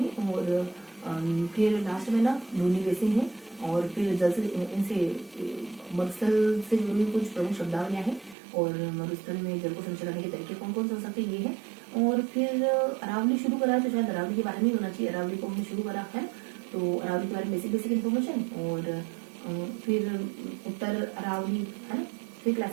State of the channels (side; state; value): left; drops out; at 8.3 s